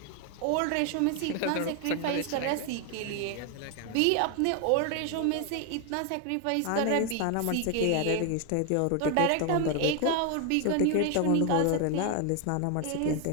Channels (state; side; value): different; both; correlation 0.01